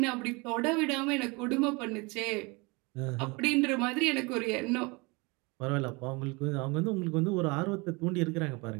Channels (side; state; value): left; quieter; 27.2 dB